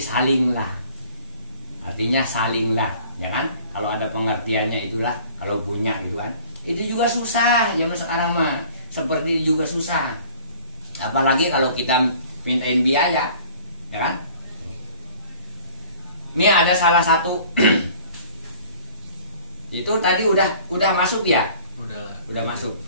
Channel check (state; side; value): inverted; both; correlation -0.50